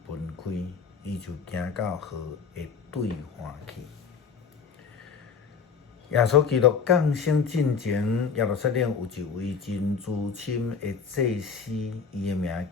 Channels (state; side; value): quieter; right; 6.0 dB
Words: 分开，伊就行到河的对岸去。耶稣基督降生进前，耶路撒冷有一位真资深的祭司，伊的名